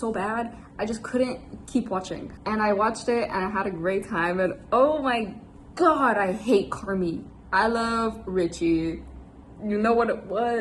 bad. I just couldn't keep watching, and I watched it and I had a great time. And oh my god, I hate Carmi. I love Richie. You know what it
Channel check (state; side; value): identical; both; correlation 1.00